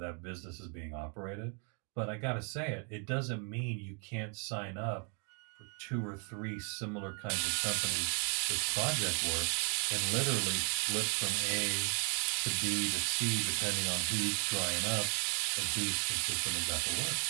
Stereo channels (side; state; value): left; quieter; 38.2 dB